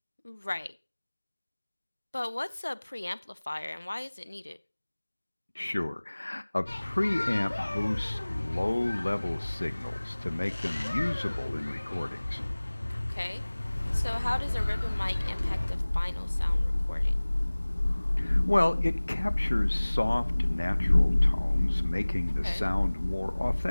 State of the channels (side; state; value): both; inverted; correlation -1.00